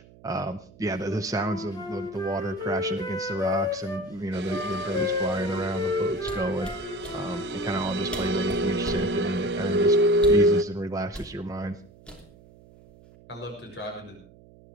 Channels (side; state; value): right; noise; hum, 24 dB below the sound